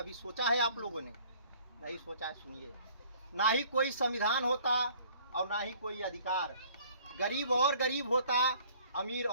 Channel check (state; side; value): inverted; both; correlation -0.55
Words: सोचा है आप लोगों ने? नहीं सोचा है। सुनिए, ना ही कोई संविधान होता और ना ही कोई अधिकार, गरीब और गरीब होता, अमीर